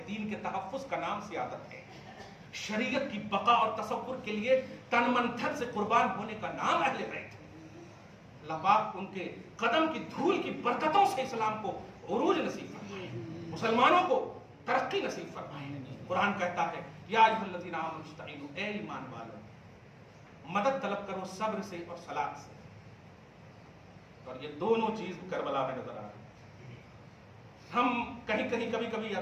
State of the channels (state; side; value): identical; both; correlation 1.00